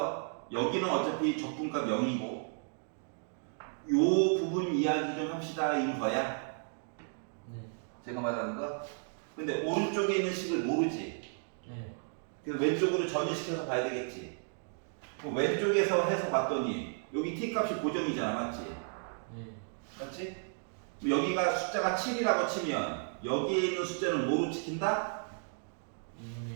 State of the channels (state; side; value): silent; left; 55 dB below the other